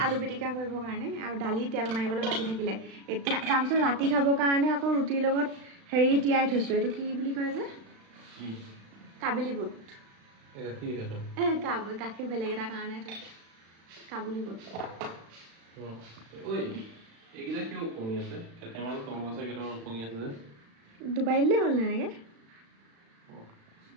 আলু পিটিকা কৰিবৰ কাৰণে আৰু দালি তেল মাৰিবলৈ বাকী থাকিলে এতিয়া তাৰপিছত ৰাতি খাবৰ কাৰণে আকৌ ৰুটিৰ লগত হেৰি তিয়াই থৈছোঁ এইটো কি বুলি কয় যে কাবেলি বুট গাখীৰ বেলেগ এটা কাৰণে থৈছোঁ কাবুলি বুট ডুবাই দিলেই হ'ল এনেকৈ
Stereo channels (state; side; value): late; left; 36 ms